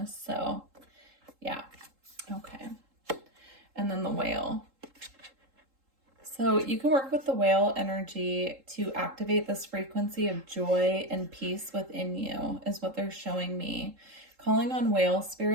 So yeah. Okay. And then the whale. So you can work with the whale energy to activate this frequency of joy and peace within you, is what they're showing me. Calling on whale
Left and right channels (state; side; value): late; left; 3.7 ms